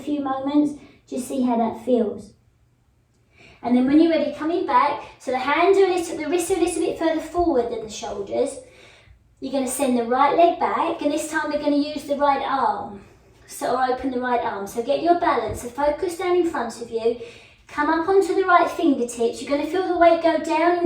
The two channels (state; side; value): identical; both; correlation 1.00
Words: moments. Just see how that feels. And then when you're ready, coming back, so the hands are the wrists are a little bit further forward than the shoulders. You're going to send the right leg back, and this time we're going to use the right arm. Or open the right arm. So get your balance. So focus down in front of you. Come up onto the right fingertips. You're going to feel the weight go down